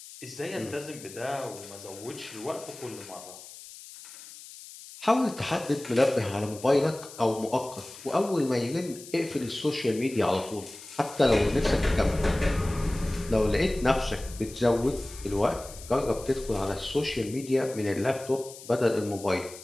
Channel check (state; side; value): noise; left; hiss, 16 dB below the sound